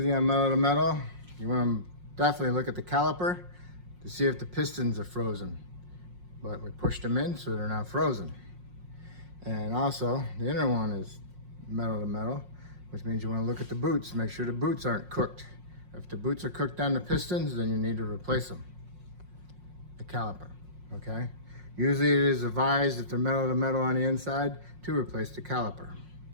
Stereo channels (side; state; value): left; late; 5.5 ms